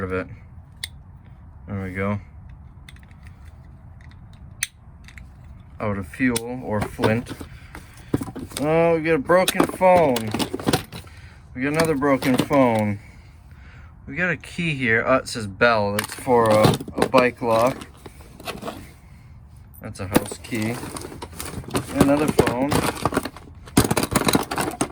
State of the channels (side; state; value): both; identical; correlation 1.00